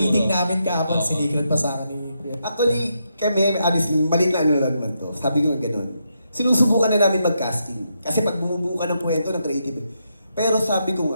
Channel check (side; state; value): both; inverted; correlation -0.81